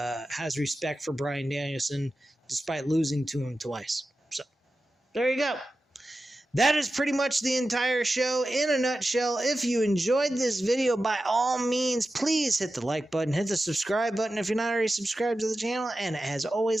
respect for Bryan Danielson despite losing to him twice. So there you go. That is pretty much the entire show in a nutshell. If you enjoyed this video, by all means, please hit the like button, hit the subscribe button if you're not already subscribed to the channel, and as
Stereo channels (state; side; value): normal; both; correlation 0.93